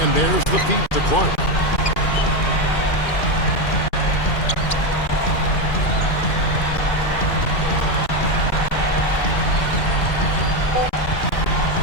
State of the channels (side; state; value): right; late; 2.4 ms